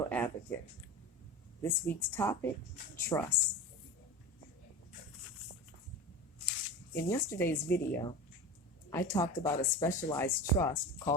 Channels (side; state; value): both; normal; correlation 0.29